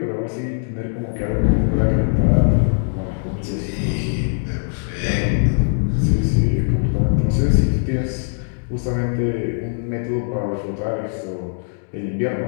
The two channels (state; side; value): silent; right; digital silence